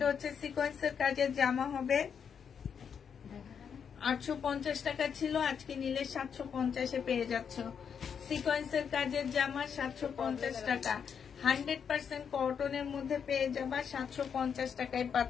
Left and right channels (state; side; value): quieter; right; 7.2 dB